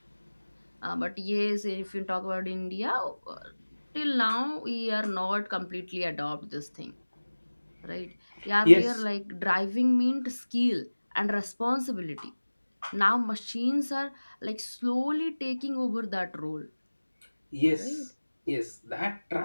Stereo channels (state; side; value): inverted; both; correlation -1.00